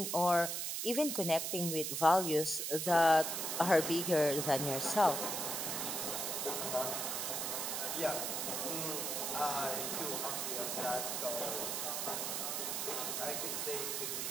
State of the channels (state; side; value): noise; right; hiss, 1 dB below the sound